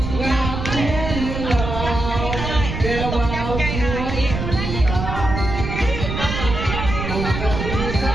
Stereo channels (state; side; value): noise; right; rumble, 4 dB below the sound